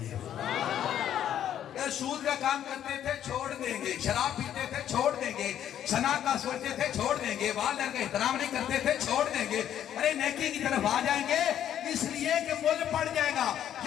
گے، اگر سود کا کام کرتے تھے چھوڑ دیں گے، شراب پیتے تھے چھوڑ دیں گے، سنا کا سوچتے تھے چھوڑ دیں گے، والدین کا احترام نہیں کرتے تھے چھوڑ دیں گے، ارے نیکی کی طرف آ جائیں گے، اس لیے کہ مول پڑ جائے گا،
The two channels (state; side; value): quieter; right; 10.5 dB